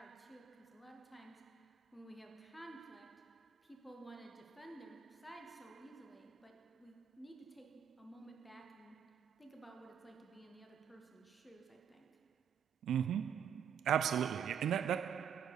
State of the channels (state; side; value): quieter; left; 8.3 dB